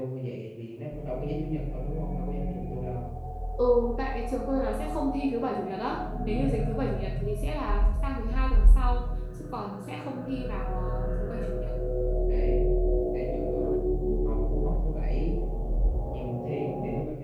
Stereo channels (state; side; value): identical; both; correlation 1.00